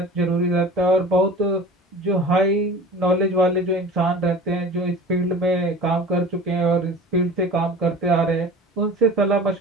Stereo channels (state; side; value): normal; both; correlation 0.39